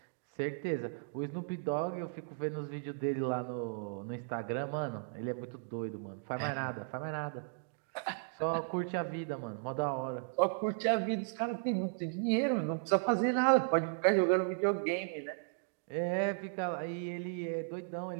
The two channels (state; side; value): silent; left; digital silence